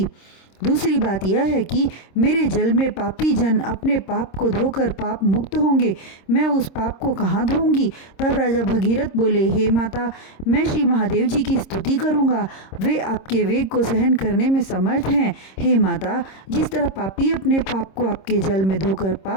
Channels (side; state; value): right; late; 26 ms